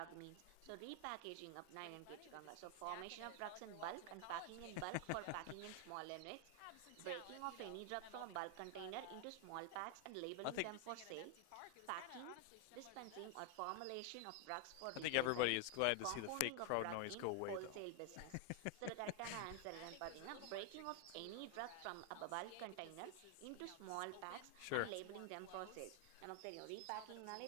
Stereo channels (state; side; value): different; both; correlation 0.00